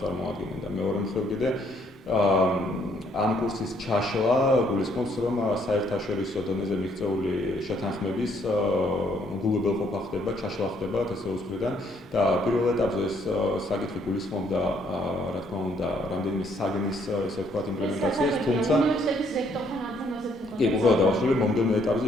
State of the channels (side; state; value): both; normal; correlation 0.68